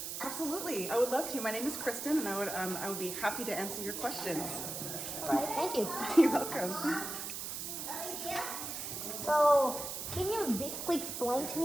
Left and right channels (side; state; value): right; noise; hiss, 5 dB below the sound